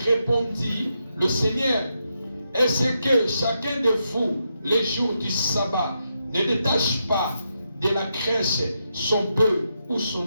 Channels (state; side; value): inverted; both; correlation -0.83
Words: le Seigneur: est-ce que chacun de vous, les jours du sabbat, ne détache pas de la crèche son bœuf ou